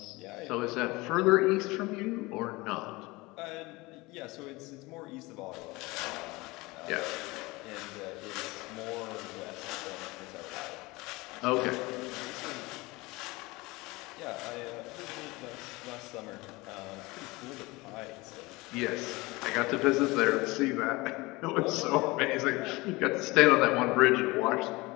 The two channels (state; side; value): quieter; right; 22.5 dB